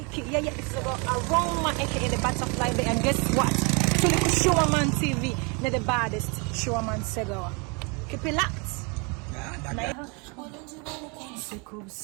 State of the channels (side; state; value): left; quieter; 31.8 dB